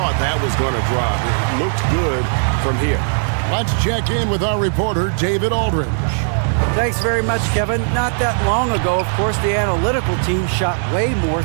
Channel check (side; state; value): left; silent; 67 dB below the other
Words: that was going to drop. It looked good from here. Let's check in with our reporter, David Aldridge. Thanks very much, Kevin. Not that long ago, of course, the analytical team shot way more